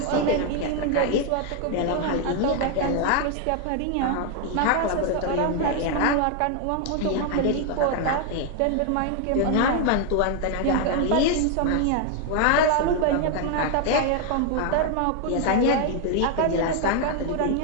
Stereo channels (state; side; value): different; both; correlation 0.00